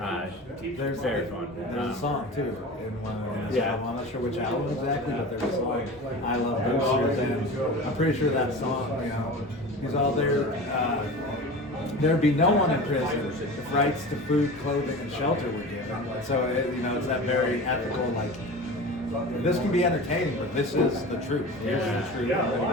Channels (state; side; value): normal; both; correlation 0.33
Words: very fun. There's a song too in one of his Yeah. album. I'm not sure which album exactly, but there's a song, I Love Boosters, and I'm pretty sure that song, he's all there. There'd be no one in prison if rights to food, clothing, and shelter were given. So it's that very ethical, like, this can be entertaining, but this is the truth. Here's the truth. I'm going